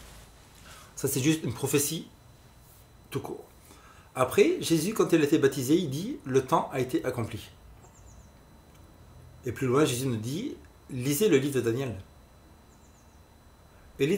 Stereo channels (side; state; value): both; identical; correlation 1.00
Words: Ça, c'est juste une prophétie tout court. Après, Jésus, quand il a été baptisé, il dit: le temps a été accompli. Et plus loin, Jésus nous dit: lisez le livre de Daniel. Et le